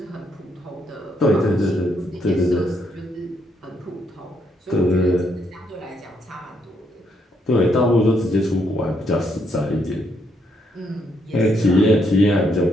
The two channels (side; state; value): both; normal; correlation 0.74